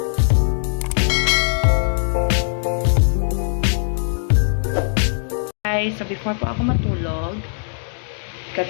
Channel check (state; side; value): silent; right; digital silence